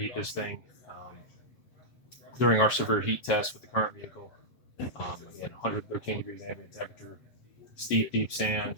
this thing. During our severe heat test with the current vehicle, again, 113 degrees ambient temperature, steep, deep sand,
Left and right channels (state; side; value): late; right; 7.9 ms